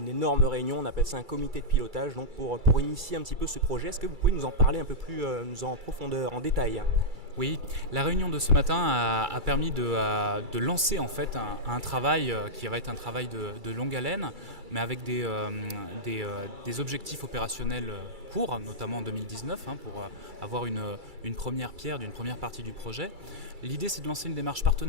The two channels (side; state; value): left; late; 2.3 ms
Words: énorme réunion, on appelle ça un comité de pilotage, donc pour initier un petit peu ce projet. Est-ce que vous pouvez nous en parler un peu plus en profondeur, en détail? Oui, la réunion de ce matin a permis de lancer en fait un travail qui va être un travail de longue haleine, mais avec des objectifs opérationnels courts, notamment en 2019, pour avoir une première pierre d'une première partie du projet. L'idée, c'est de lancer une démarche